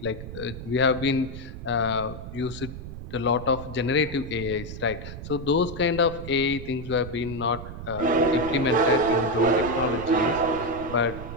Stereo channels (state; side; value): noise; right; rumble, 10 dB below the sound